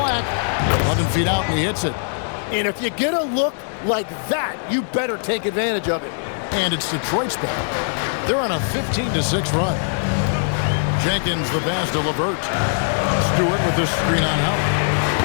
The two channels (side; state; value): right; silent; 65 dB below the other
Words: 11 feet out, and he hits it. And if you get a look like that, you better take advantage of it. And it's Detroit's ball. They're on a 15-6 run. Jenkins the pass to LeVert. Stewart with the screen on Howard.